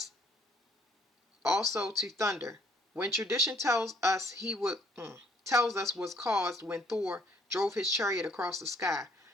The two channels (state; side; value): normal; both; correlation 0.63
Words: also to thunder, when tradition tells us was caused when Thor drove his chariot across the sky.